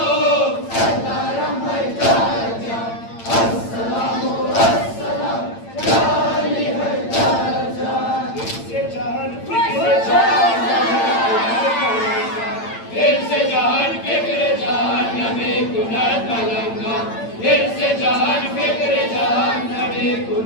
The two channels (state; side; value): late; right; 8.8 ms